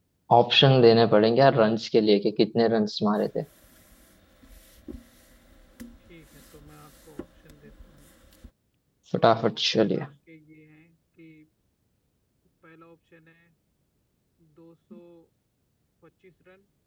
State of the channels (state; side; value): identical; both; correlation 1.00